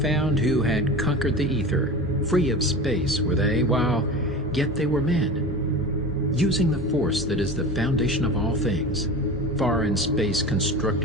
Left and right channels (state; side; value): normal; both; correlation 0.31